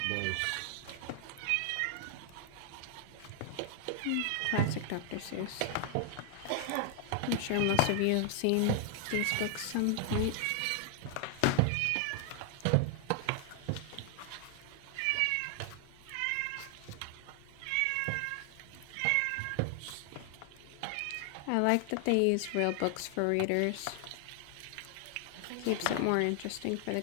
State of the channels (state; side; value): different; both; correlation 0.00